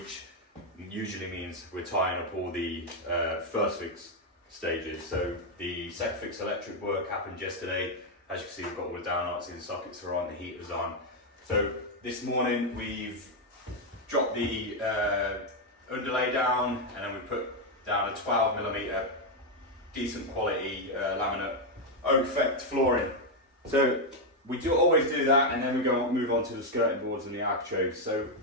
usually means we're tying up all the first fix stages. So the second fix electric work happened yesterday. As you can see, we've got all the downlights in, the sockets are on, the heater's on. So this morning we've dropped the underlay down, and then we put down a 12mm decent quality laminate oak effect flooring. So we always do that, and then we move on to the skirting boards and the architraves. So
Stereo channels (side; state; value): both; normal; correlation 0.02